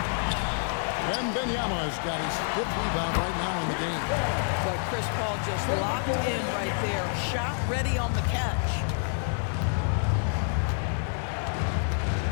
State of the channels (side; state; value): right; silent; 59 dB below the other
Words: Wembanyama has got his 5th rebound right now in the game. Boy, Chris Paul just locked in right there. Shot ready on the catch.